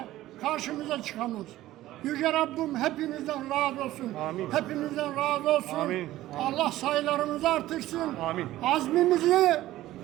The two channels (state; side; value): quieter; left; 15.3 dB